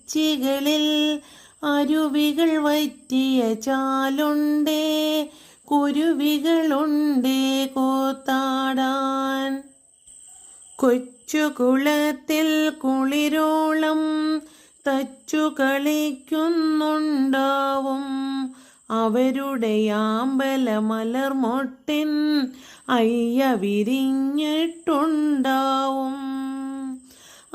അരുവികൾ വറ്റിയ ചാലുണ്ടേ കുരുവികളുണ്ടേ കൂത്താടാൻ, കൊച്ചുകുളത്തിൽ കുളിരോളം തച്ചു കളിക്കുന്നുണ്ടാവും, അവരുടെ ആമ്പല മലർമൊട്ടിൻ അയ്യ വിരിഞ്ഞിട്ടുണ്ടാവും,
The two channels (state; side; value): identical; both; correlation 1.00